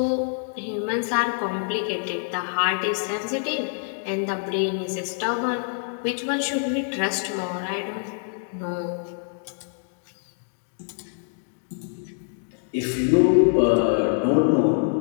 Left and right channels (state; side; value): silent; right; digital silence